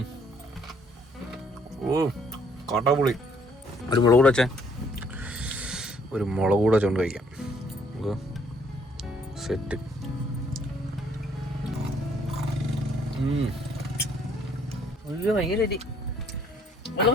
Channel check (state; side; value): normal; both; correlation 0.65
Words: ഓ കാട്ടാപുളി. ഒരു മുളക് കൂടെ വെച്ചേ. ഒരു മുളക് കൂടെ വെച്ചോണ്ട് കഴിക്കാം. സെറ്റ്.